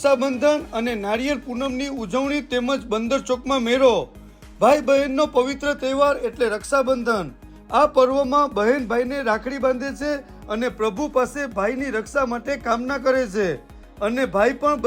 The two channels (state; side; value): identical; both; correlation 1.00